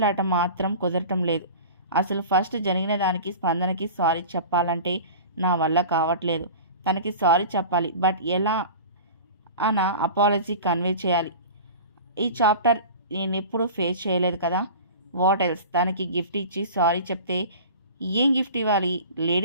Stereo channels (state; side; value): inverted; both; correlation -0.37